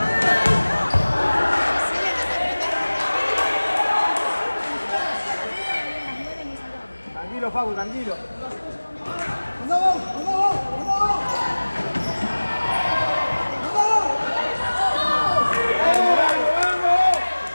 Tranquilo, Facu, tranquilo. ¡Andamos! ¡Andamos! ¡Andamos!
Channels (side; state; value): both; inverted; correlation -1.00